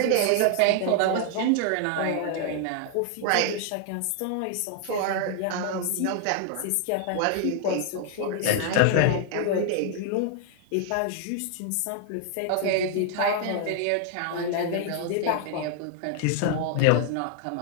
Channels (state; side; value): different; both; correlation 0.00